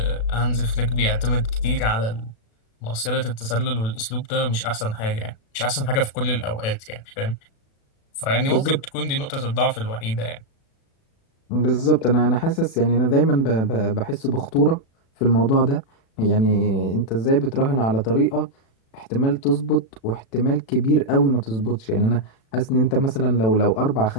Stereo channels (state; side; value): late; right; 36 ms